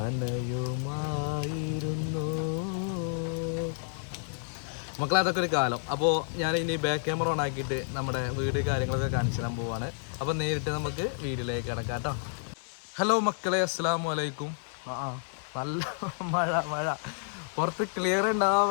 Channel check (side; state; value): right; silent; digital silence